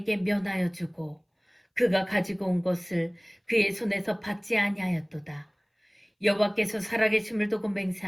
면하여 주고 그가 가지고 온 것을 그의 손에서 받지 아니하였도다. 여호와께서 살아계심을 두고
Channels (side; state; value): both; identical; correlation 1.00